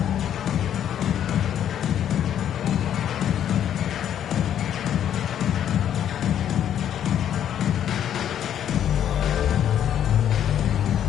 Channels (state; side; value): quieter; right; 10.0 dB